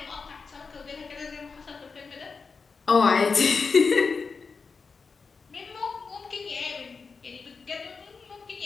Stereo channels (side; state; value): right; quieter; 4.9 dB